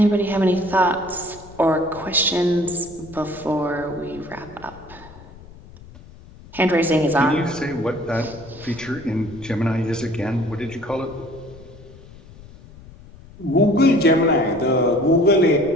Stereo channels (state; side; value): noise; left; rumble, 20 dB below the sound